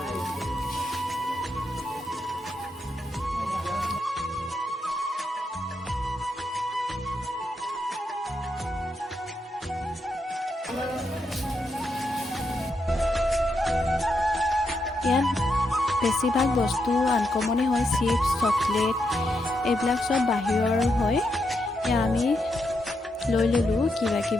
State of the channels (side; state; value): both; normal; correlation 0.82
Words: ইয়াত বেছিভাগ বস্তু আনকমনে হয়, চিপছ, চকলেট এইবিলাক চব বাহিৰৰ হয়। এয়া আমি লৈ ল'লোঁ কিবা